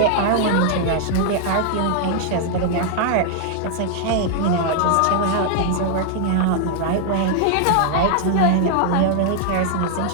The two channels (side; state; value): both; different; correlation 0.00